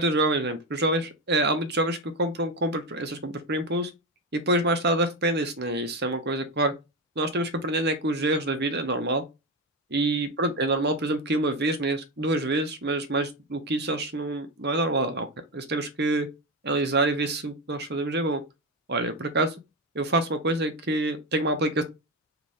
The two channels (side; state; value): both; normal; correlation 0.14